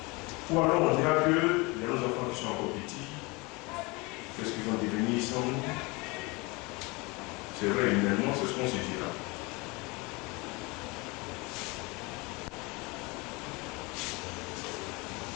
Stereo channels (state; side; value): quieter; right; 26.1 dB